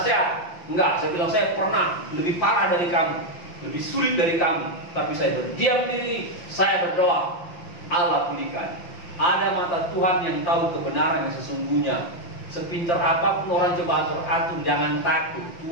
Enggak, saya bilang saya pernah lebih parah dari kamu, lebih sulit dari kamu. Tapi saya berdiam diri, saya berdoa. Allah pulihkan. Ada mata Tuhan yang tahu kebenaran yang sesungguhnya. Sepintar apapun orang coba atur, jangan takut.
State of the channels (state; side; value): late; right; 5.8 ms